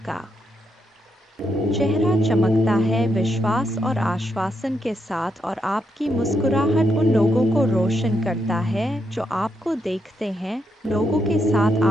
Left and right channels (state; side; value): normal; both; correlation 0.80